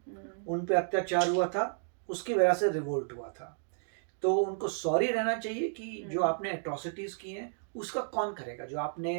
उन पे अत्याचार हुआ था, उसकी वजह से रिवोल्ट हुआ था, तो उनको सॉरी रहना चाहिए कि जो आपने अट्रोसिटीज की हैं उसका कौन करेगा? जो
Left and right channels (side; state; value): left; silent; digital silence